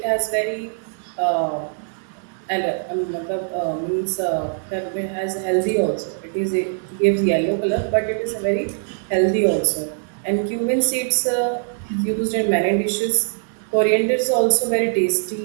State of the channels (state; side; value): silent; left; 60 dB below the other